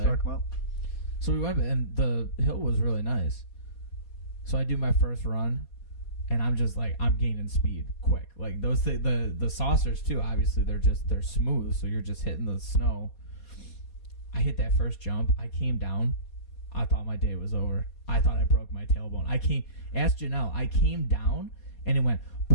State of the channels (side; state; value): right; late; 4.2 ms